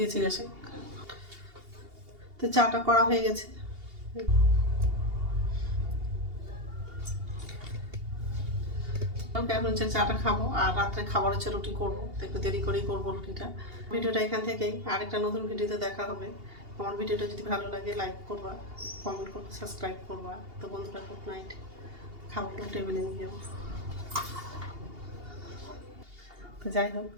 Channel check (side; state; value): left; late; 2.8 ms